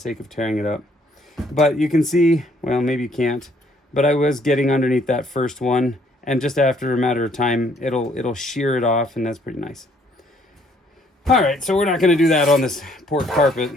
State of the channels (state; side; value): normal; both; correlation 0.65